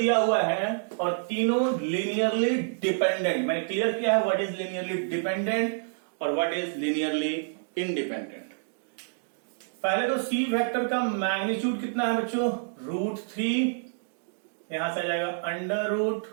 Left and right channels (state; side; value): silent; left; digital silence